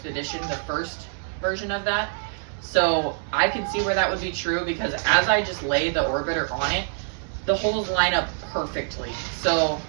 the first version of that. So I can see where that would be true because as I just laid the Orbiter on it, the holes line up perfectly. So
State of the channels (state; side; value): silent; left; digital silence